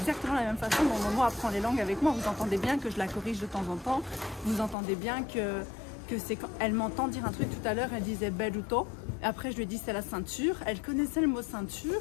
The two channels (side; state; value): right; drops out; at 4.8 s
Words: la même façon dont Momo apprend les langues avec moi. Vous entendez bien que je la corrige de temps en temps, vous entendez bien que c'est quand elle m'entend dire un truc tout à l'heure, elle disait belluto, après je lui ai dit c'est la ceinture, elle connaissait le mot